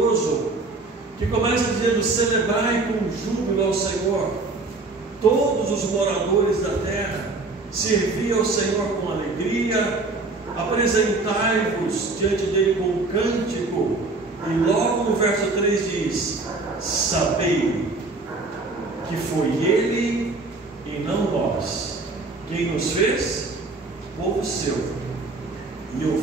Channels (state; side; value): quieter; left; 3.5 dB